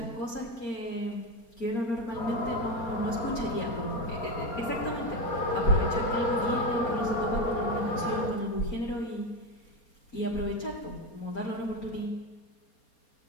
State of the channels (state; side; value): late; right; 4.3 ms